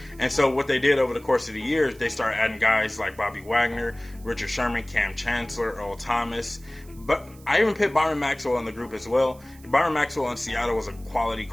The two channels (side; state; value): right; noise; hiss, 25 dB below the sound